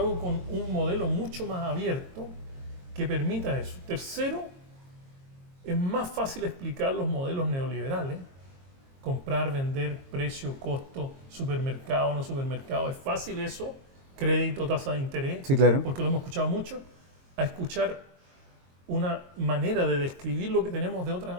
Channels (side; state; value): left; late; 22 ms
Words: con un modelo mucho más abierto que permita eso. Tercero, es más fácil explicar los modelos neoliberales, comprar, vender, precio, costo, supermercado, no supermercado, es fácil eso, crédito, tasa de interés, sí, claro, porque lo hemos escuchado mucho, a escuchar una manera de describir lo que tenemos de